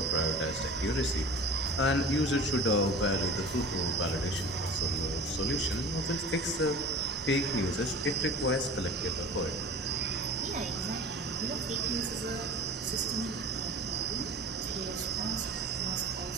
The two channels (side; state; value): both; normal; correlation 0.38